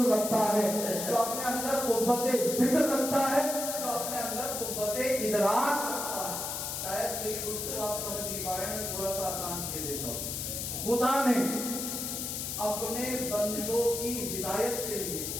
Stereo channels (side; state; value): left; noise; hiss, 4 dB below the sound